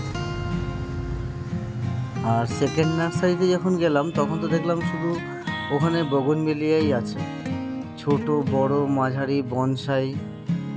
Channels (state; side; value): identical; both; correlation 1.00